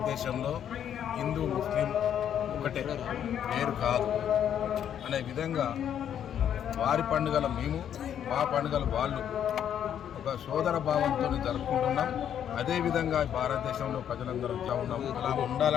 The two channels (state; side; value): quieter; right; 9.4 dB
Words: హిందూ ముస్లిం ఒకటే, వేరు కాదు అనే విధంగా వారి పండుగలు మేము, మా పండుగలు వాళ్ళు ఒక సోదర భావంతో జరుపుకుంటున్నాం. అదేవిధంగా భారతదేశంలో ప్రజలందరూ ఇట్లా ఉన్నాం, అలా